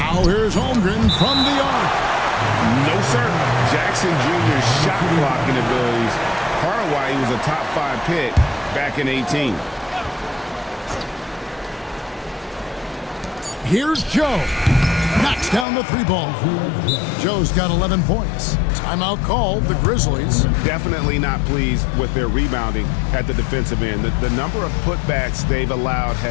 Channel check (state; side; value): drops out; right; at 15.7 s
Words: here's Holmgren from the arc. No, sir. Jackson Jr.'s shot blocking abilities, part of why he was a top 5 pick back in 18. Here's Joe. Knocks down the 3-ball. Joe's got 11 points. Timeout called, the Grizzlies. Definitely not pleased with their rebounding at the defensive end. The number of putbacks they've allowed